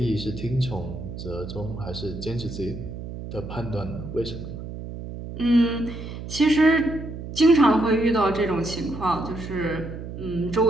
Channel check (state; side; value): noise; right; hum, 9 dB below the sound